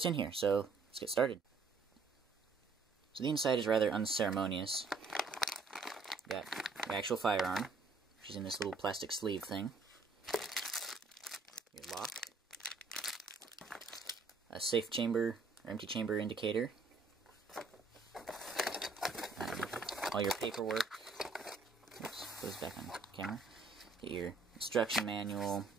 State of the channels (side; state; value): left; quieter; 4.0 dB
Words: in here, so let's get started. So the inside is rather unceremonious. Got your actual firearm, which is in this little plastic sleeve thing. Your lock. A safe chamber, or empty chamber indicator. All your paperwork. Oops, goes back on camera. Get your instruction manual,